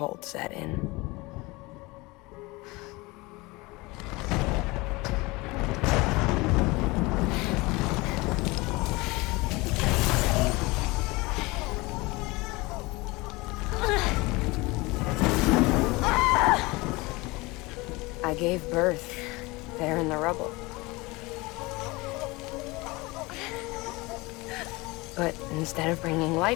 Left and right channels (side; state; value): right; quieter; 23.3 dB